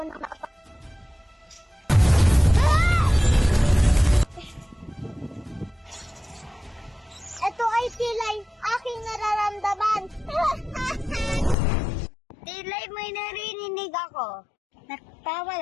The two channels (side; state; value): right; drops out; at 11.6 s